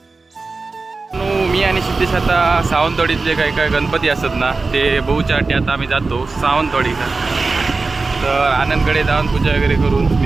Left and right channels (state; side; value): quieter; left; 3.9 dB